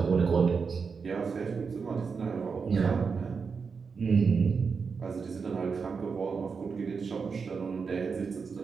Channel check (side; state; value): left; quieter; 5.4 dB